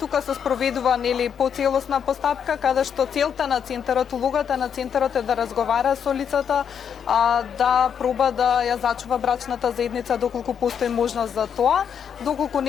се спроведува нели поцелосна постапка каде што целта на центарот, улогата на центарот е да разговара со лицата, да проба да ја зачува брачната заедница доколку постои можност за тоа, доколку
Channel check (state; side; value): quieter; right; 7.8 dB